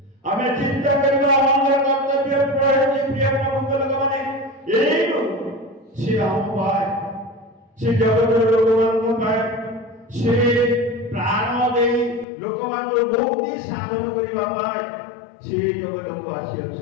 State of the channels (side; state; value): right; drops out; at 12.2 s